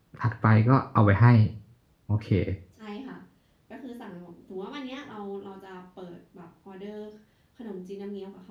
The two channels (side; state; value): both; identical; correlation 1.00